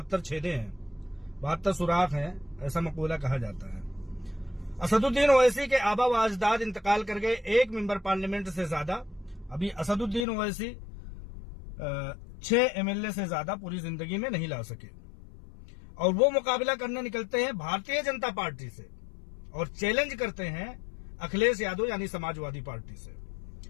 छेदे हैं, 72 सुराख हैं, ऐसा मकूला कहा जाता है। असदुद्दीन ओवैसी के आबा व अजदाद इंतकाल कर गए, एक मेंबर पार्लियामेंट से ज्यादा। अभी असदुद्दीन ओवैसी 6 एमएलए से ज्यादा पूरी जिंदगी में नहीं ला सके, और वो मुकाबला करने निकलते हैं भारतीय जनता पार्टी से और चैलेंज करते हैं अखिलेश यादव यानी समाजवादी पार्टी से।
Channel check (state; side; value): drops out; right; at 10.2 s